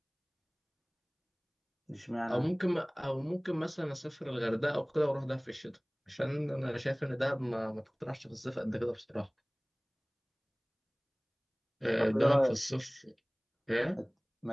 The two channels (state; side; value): identical; both; correlation 1.00